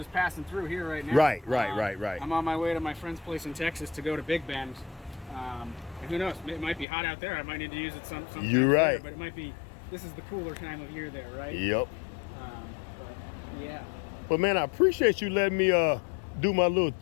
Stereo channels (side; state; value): right; drops out; at 6.9 s